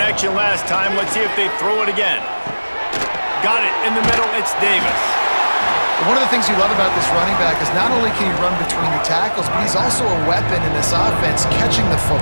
last time. Let's see if they throw it again. Got it in the middle. It's Davis. One of the things you love about this running back is not only can he run between the tackles, but he's also a weapon in this offense catching the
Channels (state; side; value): inverted; both; correlation -1.00